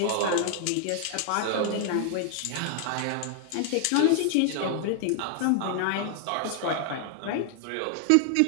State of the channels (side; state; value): both; different; correlation 0.00